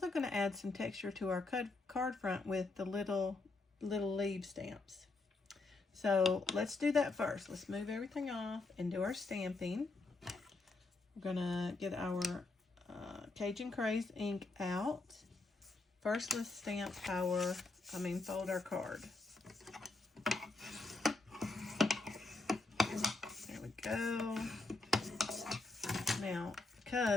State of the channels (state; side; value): quieter; right; 3.5 dB